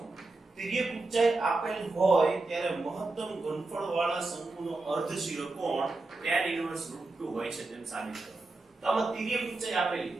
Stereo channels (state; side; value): quieter; left; 3.3 dB